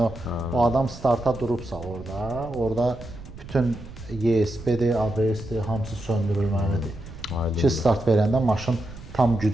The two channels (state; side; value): noise; right; rumble, 15 dB below the sound